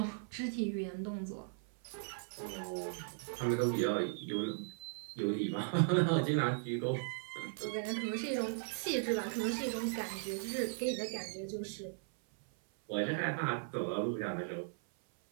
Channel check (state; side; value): silent; left; 53 dB below the other